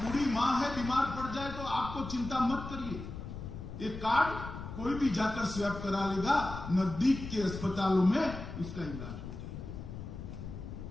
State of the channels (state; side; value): noise; left; rumble, 9 dB below the sound